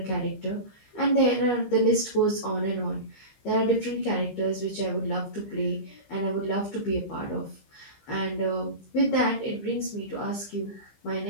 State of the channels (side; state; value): right; late; 15 ms